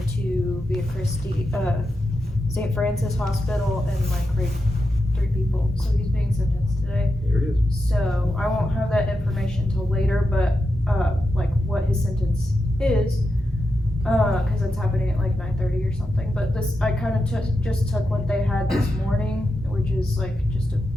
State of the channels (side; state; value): both; normal; correlation 0.88